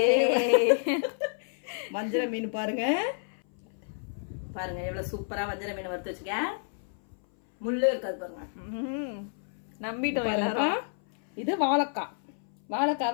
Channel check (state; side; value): silent; right; 58 dB below the other